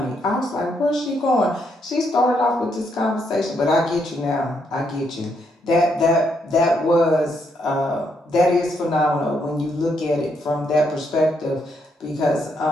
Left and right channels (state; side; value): normal; both; correlation 0.76